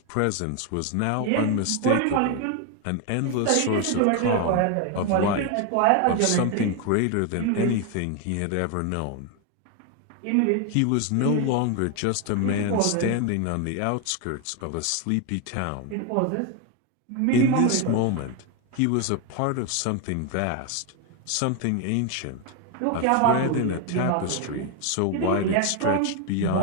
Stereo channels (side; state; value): both; different; correlation 0.01